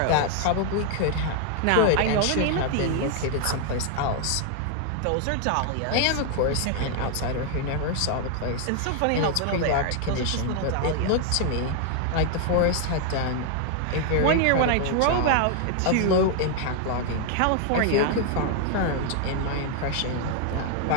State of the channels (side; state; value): both; different; correlation 0.00